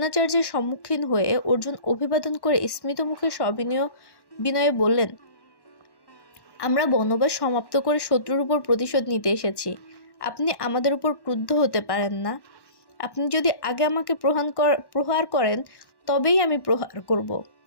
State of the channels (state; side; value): late; right; 1.1 ms